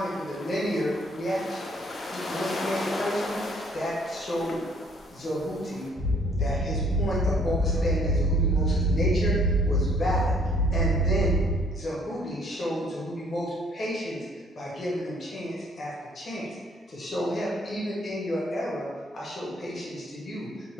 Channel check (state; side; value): normal; both; correlation 0.62